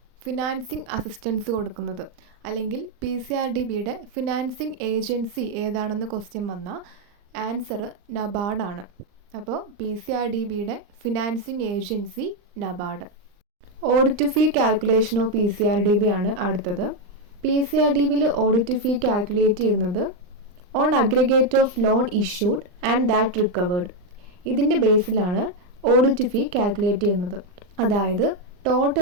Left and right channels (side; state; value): left; late; 39 ms